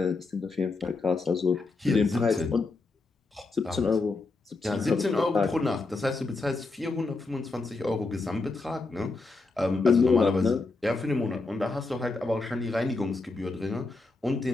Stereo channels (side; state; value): right; quieter; 3.6 dB